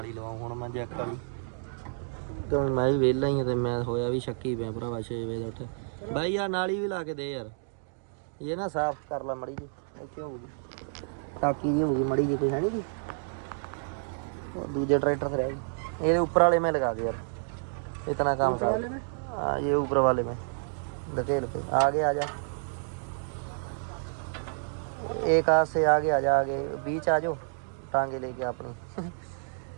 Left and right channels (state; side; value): silent; left; digital silence